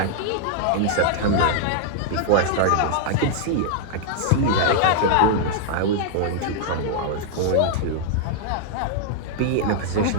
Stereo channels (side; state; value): both; different; correlation -0.01